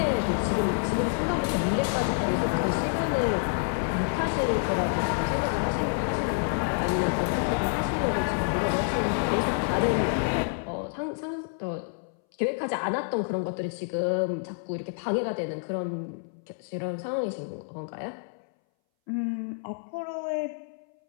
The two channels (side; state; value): right; silent; 59 dB below the other